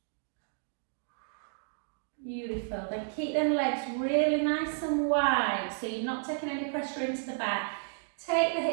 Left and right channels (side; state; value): left; silent; digital silence